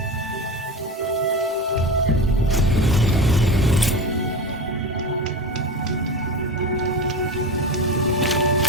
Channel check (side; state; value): both; normal; correlation 0.27